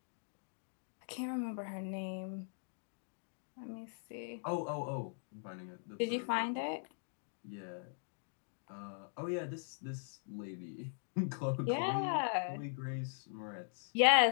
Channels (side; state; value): right; silent; digital silence